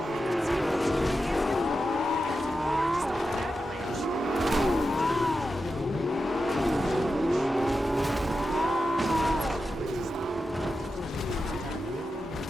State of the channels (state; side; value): normal; both; correlation 0.90